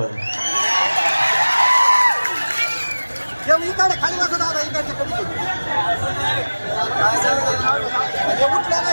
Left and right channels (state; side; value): inverted; both; correlation -1.00